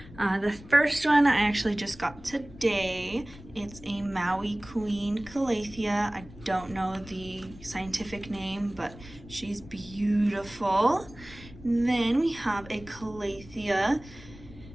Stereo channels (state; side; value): noise; left; rumble, 18 dB below the sound